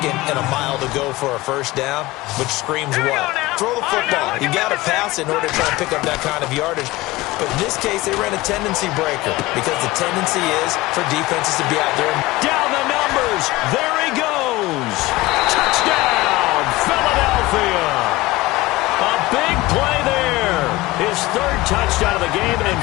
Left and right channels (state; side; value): quieter; right; 19.4 dB